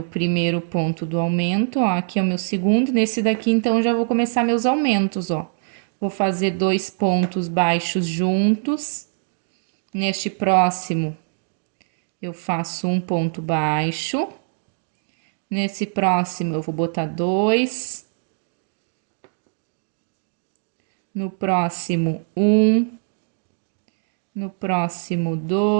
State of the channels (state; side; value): silent; left; digital silence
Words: primeiro ponto do aumento, ó. Aqui é o meu segundo. Nesse daqui, então, já vou começar meus aumentos, ó. Vou fazer 2 pontos baixos juntos. Neste próximo, eu faço um ponto baixo. Nesse próximo, eu vou botar 2. No próximo, 1. No próximo,